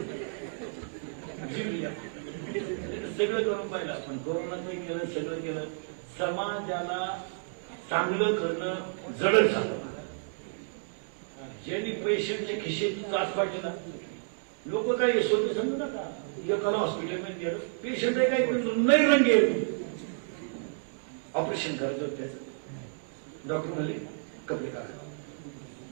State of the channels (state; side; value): silent; left; digital silence